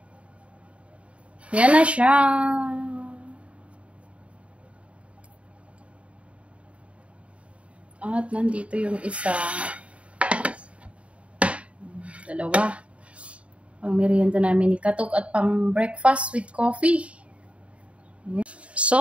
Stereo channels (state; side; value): late; left; 0.062 ms